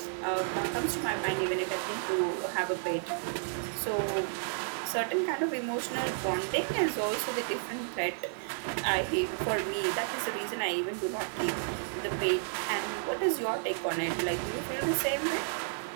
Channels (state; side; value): silent; left; digital silence